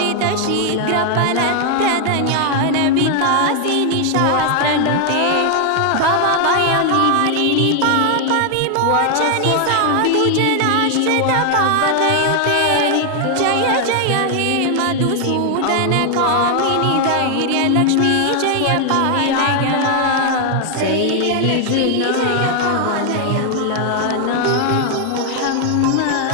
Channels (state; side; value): different; both; correlation 0.00